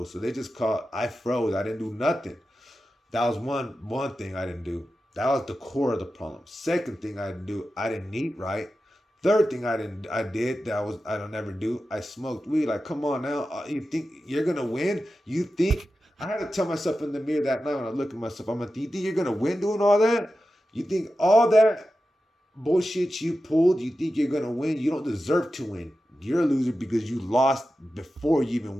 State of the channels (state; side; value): normal; both; correlation 0.92